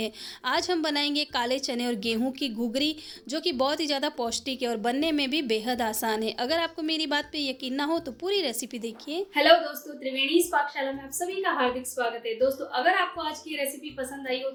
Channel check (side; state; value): both; identical; correlation 1.00